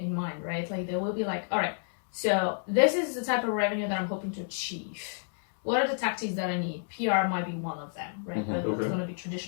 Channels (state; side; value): silent; right; digital silence